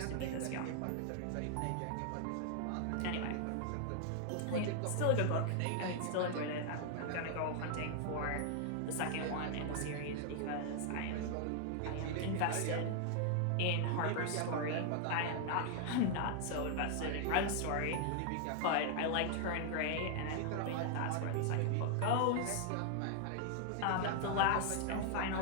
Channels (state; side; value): different; both; correlation 0.00